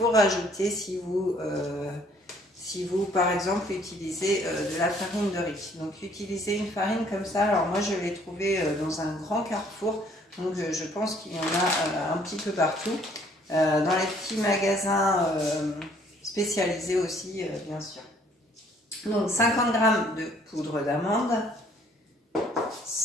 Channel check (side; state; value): both; normal; correlation 0.61